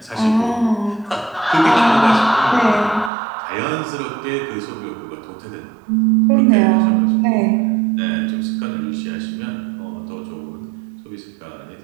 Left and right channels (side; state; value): left; drops out; at 3.1 s